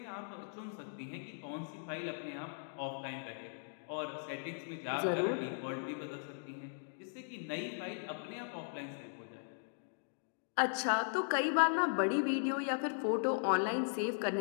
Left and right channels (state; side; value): silent; right; digital silence